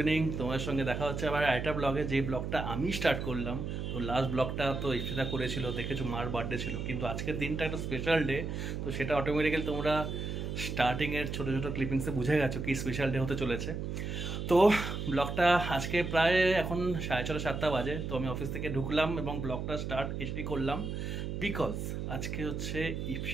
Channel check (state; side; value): noise; right; hum, 4 dB below the sound